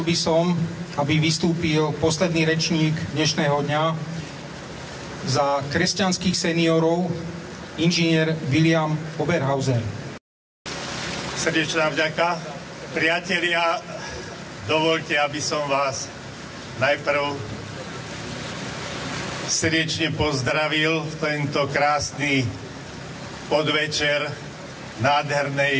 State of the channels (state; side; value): identical; both; correlation 1.00